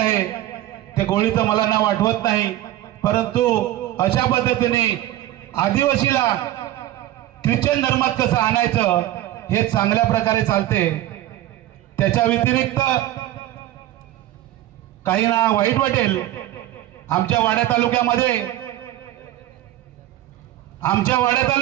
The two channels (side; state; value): left; quieter; 14.3 dB